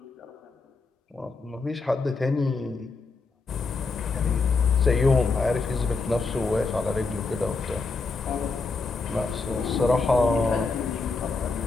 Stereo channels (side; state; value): right; quieter; 4.1 dB